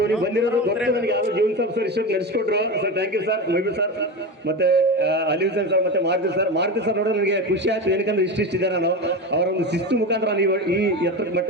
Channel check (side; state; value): both; normal; correlation 0.22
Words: ನೀವು ಬಂದಿರೋದು ಗೊತ್ತೇ ನನಗೆ. ಯಾರು ಜೀವನ್ ಸರ್ ಇಷ್ಟೊಂದು ನಡೆಸ್ಕೊಟ್ರು ಸರ್, ಥ್ಯಾಂಕ್ ಯು ಸರ್. ಮೊಯ್ಬು ಸರ್ ಮತ್ತೆ ಅಲಿ ಹುಸೇನ್ ಸರ್ ಮತ್ತೆ ಮಾರುತಿ ಸರ್ ನೋಡೋ ನನಗೆ ಖುಷಿ ಆಯ್ತು. ಏನಕ್ಕಂದ್ರೆ ಇಷ್ಟಿದೆ ನಾನು ಅವರ ಒಂದು ಶಿಸ್ತು ಮುಖಾಂತರ ನೀವು ಈ ಎತ್ತರ